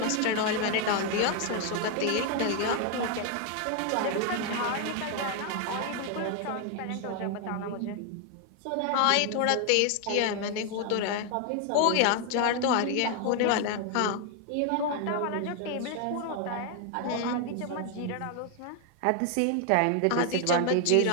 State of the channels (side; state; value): both; different; correlation 0.00